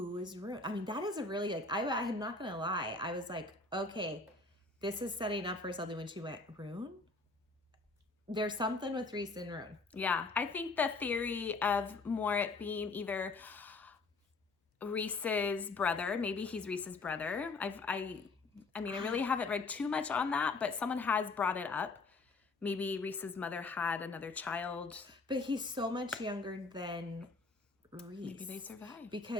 is Ruhn? I mean, that is a really, like, I'm not going to lie. I was like, okay, this is setting up for something when she went, Ruhn? There's something with Rhys and Ruhn. Yeah, I think the theory of more it being either Rhys's brother, maybe he's Rhys's brother. I mean, I really haven't read too much on that, but someone has brought it up. Maybe Rhys's mother had another child. But he's so much younger than... Rhys. Maybe they survived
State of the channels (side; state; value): right; quieter; 3.8 dB